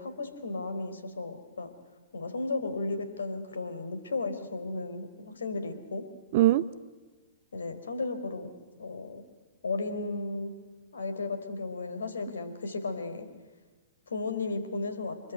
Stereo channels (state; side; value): inverted; both; correlation -0.58